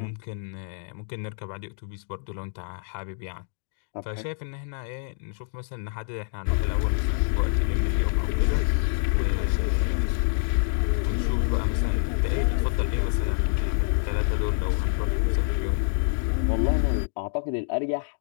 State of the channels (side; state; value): right; silent; digital silence